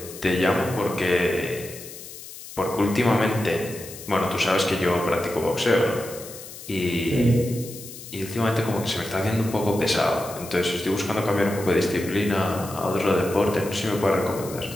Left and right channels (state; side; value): noise; left; hiss, 14 dB below the sound